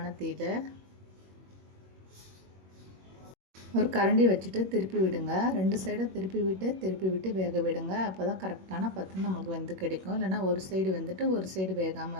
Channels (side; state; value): left; late; 21 ms